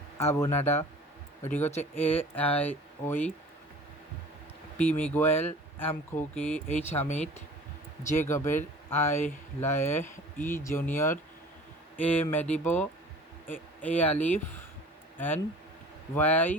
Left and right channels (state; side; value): normal; both; correlation 0.44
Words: আবুনাডা, ওইদিকে হচ্ছে ওই পি মিগুয়েল, খুকি, Hamid, J গবের, লায়ে, junior, মেডিবো, Alif and Y